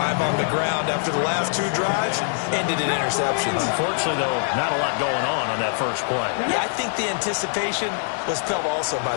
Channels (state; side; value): silent; right; digital silence